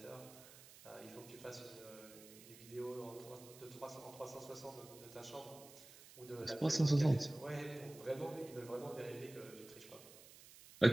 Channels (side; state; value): right; noise; hiss, 19 dB below the sound